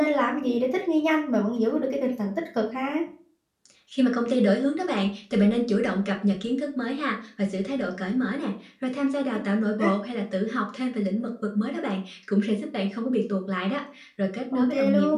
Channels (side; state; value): both; identical; correlation 1.00